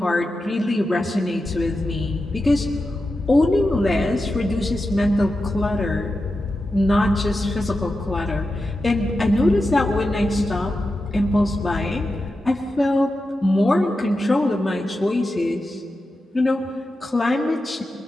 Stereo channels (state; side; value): normal; both; correlation 0.91